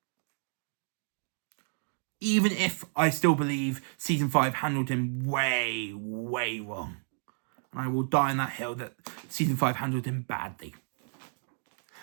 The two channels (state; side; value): silent; left; digital silence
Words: Even if I still believe season 5 handled him way, way wrong. And I will die on that hill that season 5 handled him badly.